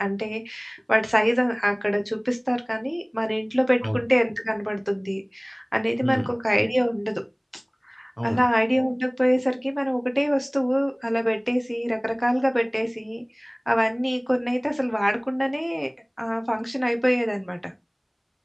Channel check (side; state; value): both; identical; correlation 1.00